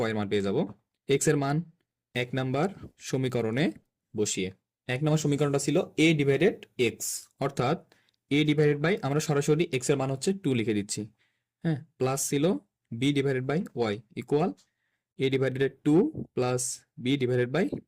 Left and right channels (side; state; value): both; identical; correlation 1.00